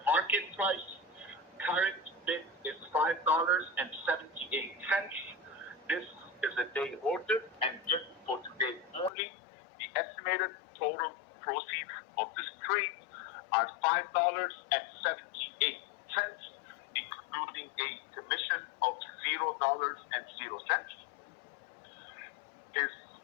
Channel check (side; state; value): right; drops out; at 9.1 s